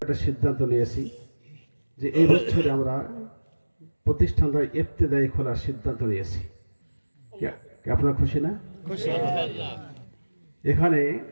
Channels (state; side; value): inverted; both; correlation -1.00